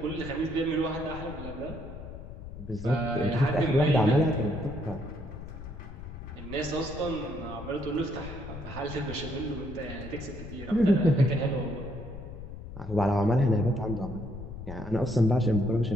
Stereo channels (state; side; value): noise; left; rumble, 11 dB below the sound